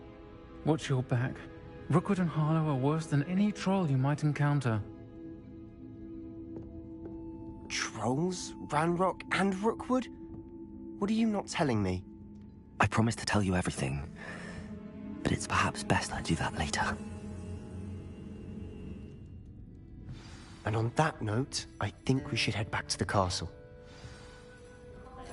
Watch your back. Rookwood and Harlow are worse than any troll you might encounter. Trolls? Ranrock and Rookwood? What are you not telling me? I promised to tell you everything, but it's perhaps best I do that later. And on that note, I think we should head back to the castle.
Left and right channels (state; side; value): identical; both; correlation 1.00